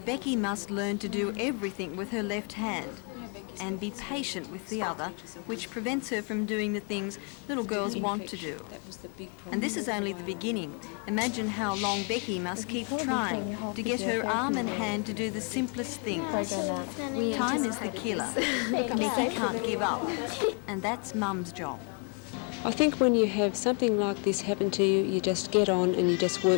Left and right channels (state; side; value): quieter; right; 38.5 dB